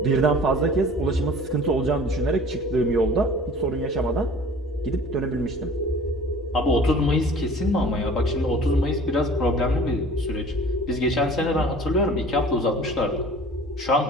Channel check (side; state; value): both; normal; correlation 0.46